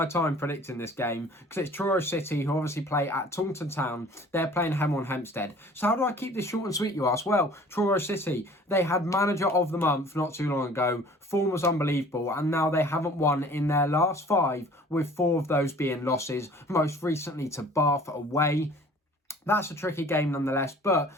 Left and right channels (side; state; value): both; normal; correlation 0.49